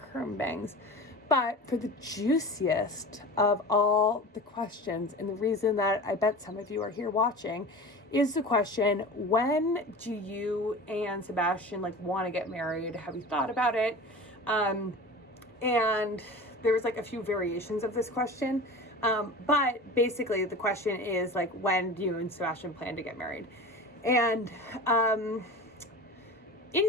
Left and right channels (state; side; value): normal; both; correlation 0.34